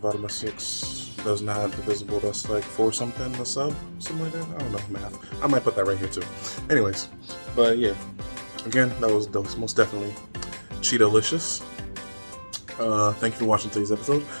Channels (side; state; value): both; inverted; correlation -1.00